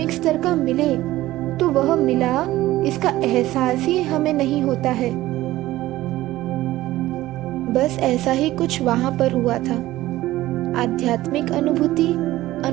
स्तर का मिले तो वह मिला, इसका एहसास ही हमें नहीं होता है। बस ऐसा ही कुछ वहां पर हुआ था। आध्यात्मिक अनुभूति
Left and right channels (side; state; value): left; quieter; 16.2 dB